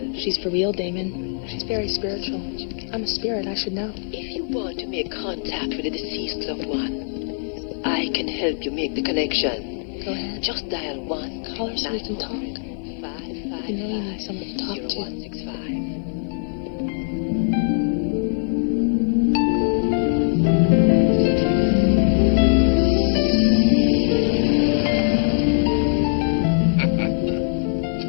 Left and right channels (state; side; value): silent; right; 64 dB below the other